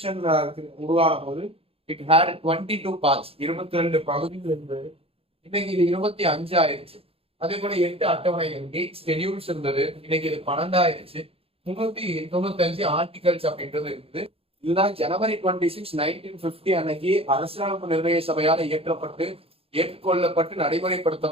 உருவான போது இட் ஹேட் 22 பார்ட்ஸ், 22 பகுதிகள் இருந்தது. இன்னைக்கு இது 25 ஆயிருச்சு. அதே போல 8 அட்டவணைகள், 8 ஸ்கெடியூல்ஸ் இருந்தது. இன்னைக்கு இது 12 ஆயிருச்சு. 395 ஆர்டிகல்ஸ் அப்படின்றது இருக்குது. இதுதான் ஜனவரி 26, 1950 அன்னைக்கு அரசியலமைப்பு நிர்ணய சபையால் இயற்றப்பட்டு ஏற்றுக்கொள்ளப்பட்டு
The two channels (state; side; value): late; left; 0.28 ms